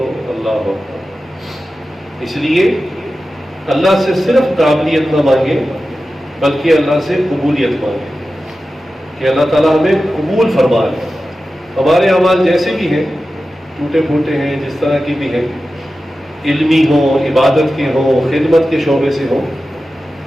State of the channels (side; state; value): both; normal; correlation 0.93